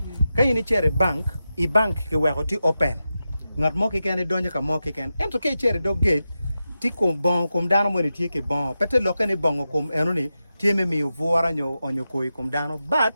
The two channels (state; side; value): inverted; both; correlation -0.91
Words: ka yini chere bank I bank ke wego ti open ngat mo ke ken donjo ka mo ke ken ento ke chere dog gate ti kom bon kom dano mo ne tie ke bon pete lokane bongo kom eno ni tie me mi vuora nyo onyo koi kom dano